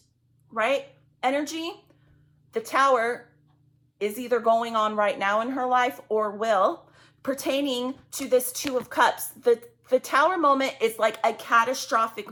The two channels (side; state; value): both; identical; correlation 1.00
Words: right? Energy. The Tower is either going on right now in her life or will, pertaining to this Two of Cups. The Tower moment is like a catastrophic